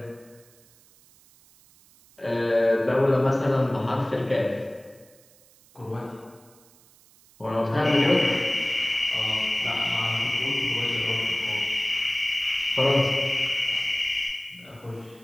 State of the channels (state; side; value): noise; right; hiss, 28 dB below the sound